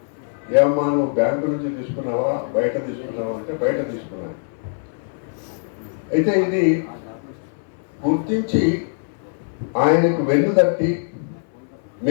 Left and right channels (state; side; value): silent; right; 60 dB below the other